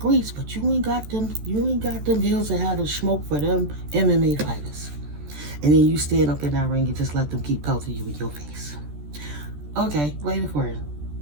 but you ain't got them hills that have the smoke for them MMA fighters. And then you stand up in that ring and just let them keep pelting you in your face. Okay, wait for it.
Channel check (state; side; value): late; left; 14 ms